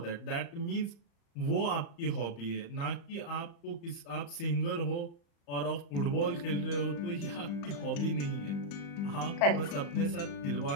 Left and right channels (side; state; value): right; late; 35 ms